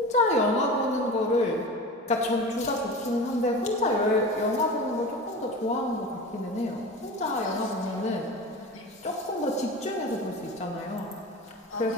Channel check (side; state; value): both; normal; correlation 0.32